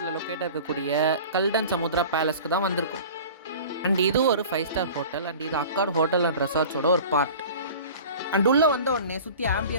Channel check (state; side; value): inverted; both; correlation -0.40